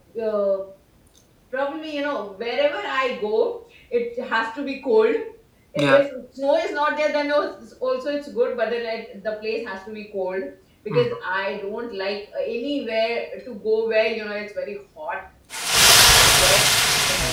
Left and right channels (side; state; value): both; identical; correlation 1.00